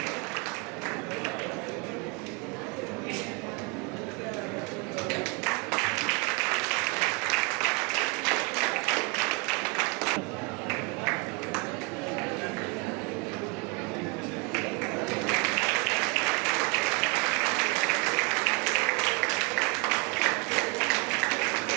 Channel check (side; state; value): left; quieter; 30.5 dB